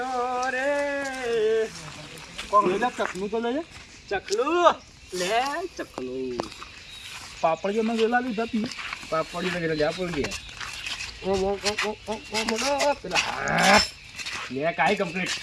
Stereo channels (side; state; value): both; identical; correlation 1.00